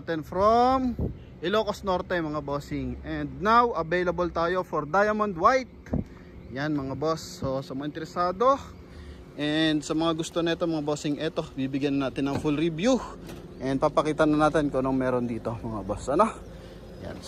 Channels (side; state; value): both; identical; correlation 1.00